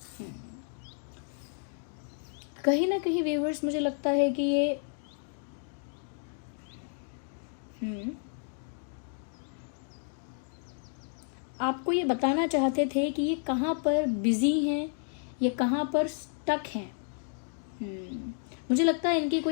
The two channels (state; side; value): silent; right; 57 dB below the other